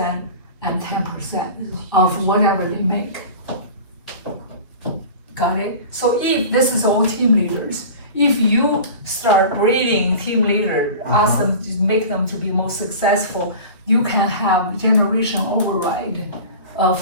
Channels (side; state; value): both; inverted; correlation -0.36